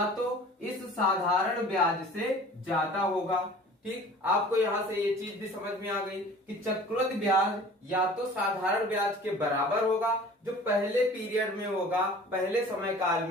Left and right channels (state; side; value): normal; both; correlation 0.45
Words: तो इस साधारण ब्याज से ज्यादा होगा। ठीक, आपको यहां से ये चीज भी समझ में आ गई कि चक्रवृद्धि ब्याज या तो साधारण ब्याज के बराबर होगा, जो पहले पीरियड में होगा, पहले समय काल